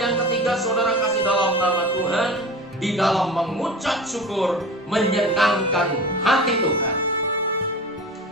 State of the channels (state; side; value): normal; both; correlation 0.34